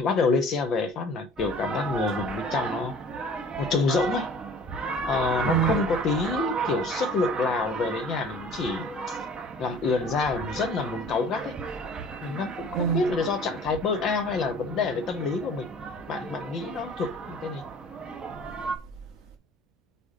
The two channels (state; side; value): normal; both; correlation 0.48